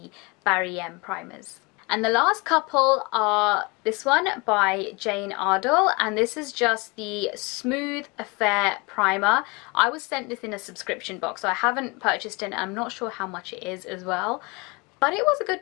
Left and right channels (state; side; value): quieter; right; 27.6 dB